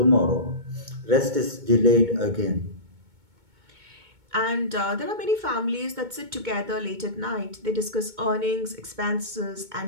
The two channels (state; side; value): late; left; 2.2 ms